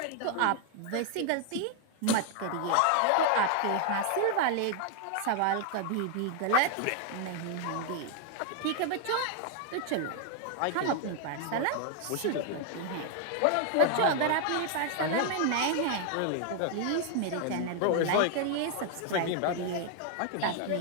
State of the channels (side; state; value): both; different; correlation 0.00